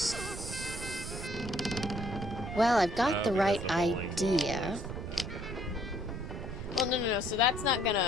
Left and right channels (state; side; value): noise; right; rumble, 7 dB below the sound